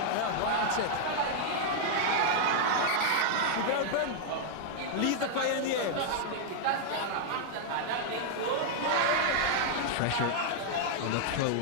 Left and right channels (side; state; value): both; different; correlation -0.01